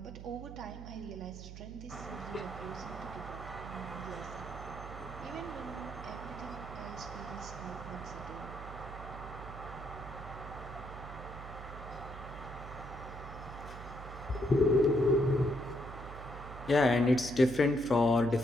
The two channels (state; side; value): noise; right; hum, 11 dB below the sound